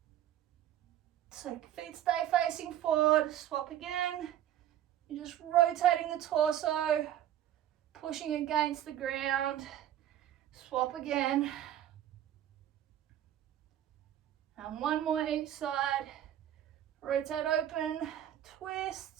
So feet stay facing forward, swap again. You're just rotating the torso, pushing against the ground, swap again. And one more each side. Rotate open,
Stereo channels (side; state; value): left; quieter; 11.6 dB